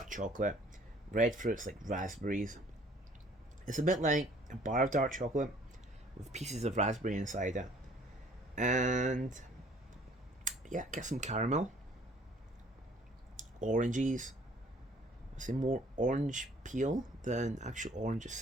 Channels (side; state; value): both; normal; correlation 0.56